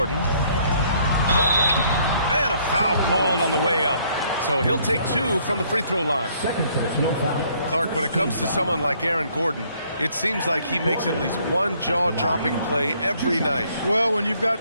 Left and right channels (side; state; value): both; inverted; correlation -0.64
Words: And a foul called on the way up. So he'll take 2 from the free throw line. Second personal foul. Clark, when it comes to someone like Aaron Gordon, it seems like he makes at least one jaw-dropping play every night. Well, when you've